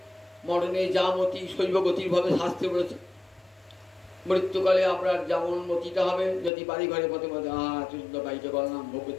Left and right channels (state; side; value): drops out; right; at 6.5 s